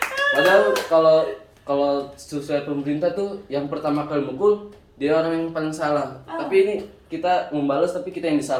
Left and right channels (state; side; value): identical; both; correlation 1.00